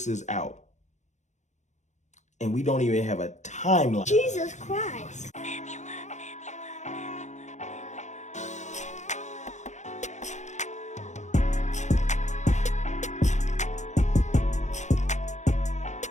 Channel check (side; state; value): right; late; 0.34 ms